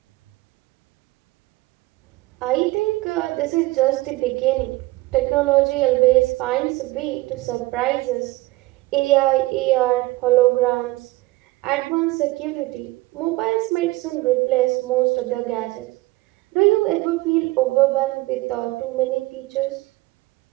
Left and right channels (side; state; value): left; quieter; 20.2 dB